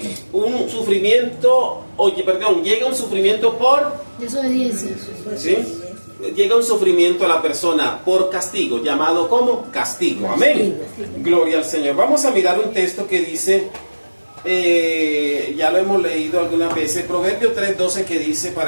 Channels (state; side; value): inverted; both; correlation -1.00